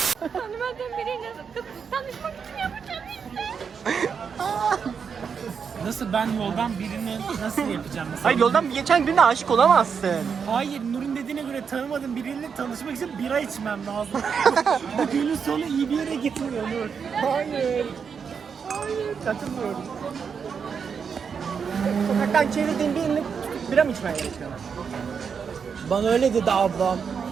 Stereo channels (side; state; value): left; quieter; 6.4 dB